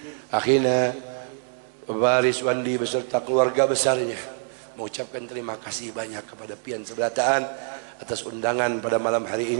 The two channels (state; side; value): silent; left; digital silence